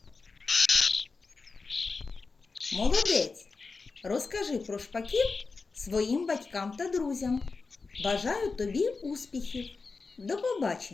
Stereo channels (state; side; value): quieter; right; 4.3 dB